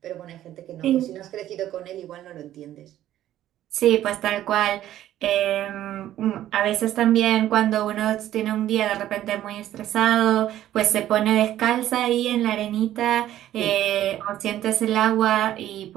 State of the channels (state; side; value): quieter; left; 12.7 dB